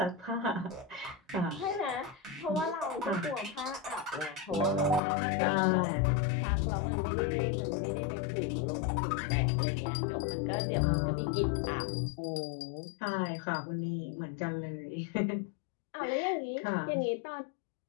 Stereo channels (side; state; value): right; drops out; at 5.0 s